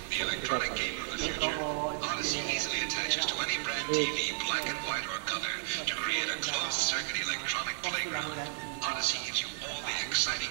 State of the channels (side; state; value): left; silent; digital silence